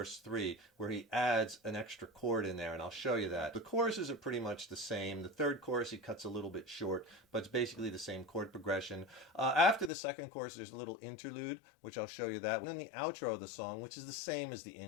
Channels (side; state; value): right; drops out; at 9.9 s